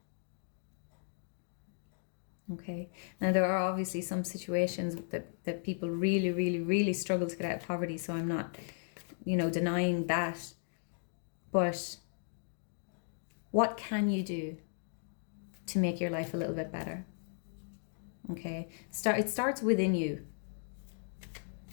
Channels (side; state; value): right; silent; digital silence